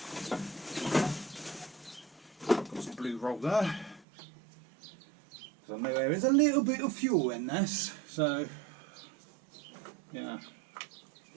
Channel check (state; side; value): drops out; left; at 4.0 s